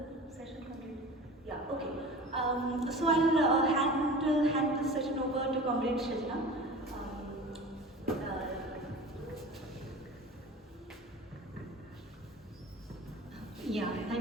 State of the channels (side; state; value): both; normal; correlation 0.37